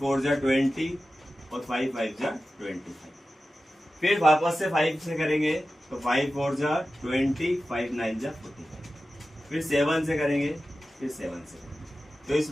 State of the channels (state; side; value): normal; both; correlation 0.94